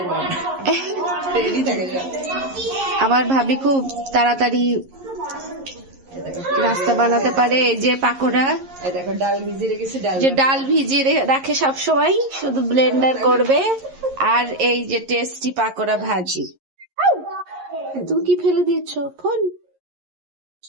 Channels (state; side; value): late; left; 11 ms